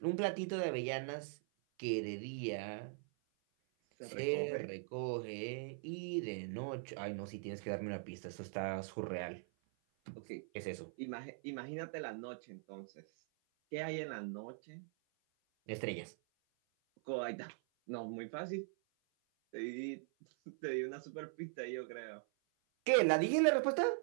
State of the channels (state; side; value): silent; left; 50 dB below the other